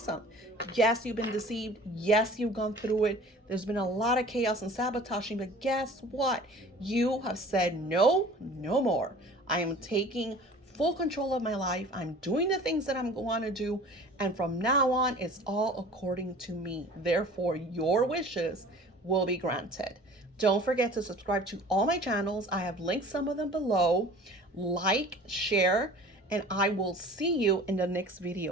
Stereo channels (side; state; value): both; normal; correlation 0.45